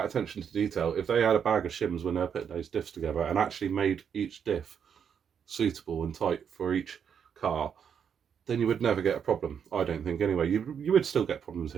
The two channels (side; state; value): left; quieter; 7.6 dB